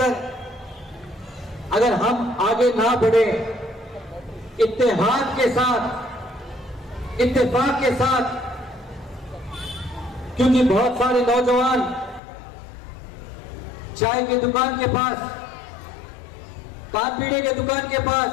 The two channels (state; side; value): drops out; right; at 12.2 s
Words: अगर हम आगे ना बढ़े इत्तेहाद के साथ, इत्तेफाक के साथ, क्योंकि बहुत सारे नौजवान चाय की दुकान के पास, पान पीने के दुकान के पास